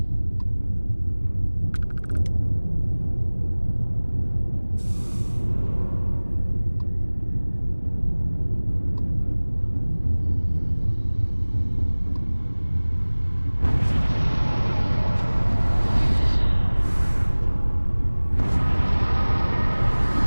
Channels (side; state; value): both; inverted; correlation -1.00